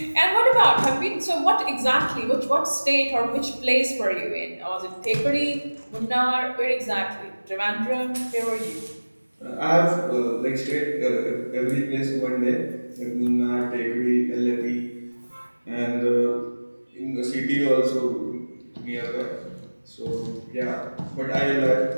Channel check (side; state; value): both; inverted; correlation -1.00